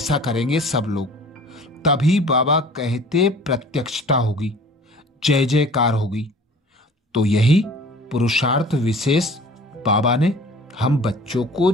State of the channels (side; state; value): both; normal; correlation 0.46